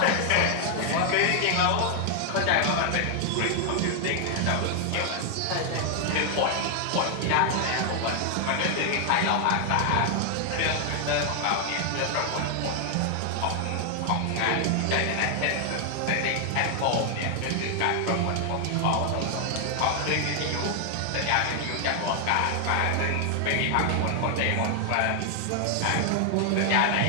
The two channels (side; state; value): both; different; correlation 0.00